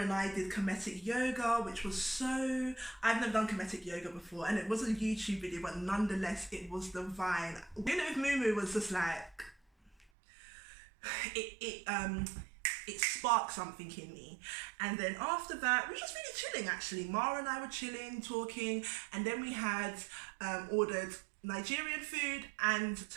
I did kinetic yoga, which was so... I've never done kinetic yoga before, and it was a YouTube video, but nonetheless, it was divine. Doing it with Mumu was just like... It sparked something in me. And then after that, we were just really chilling actually. Mara and I were chilling, talking, and then we had ordered Nigerian food and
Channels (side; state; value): left; drops out; at 10.1 s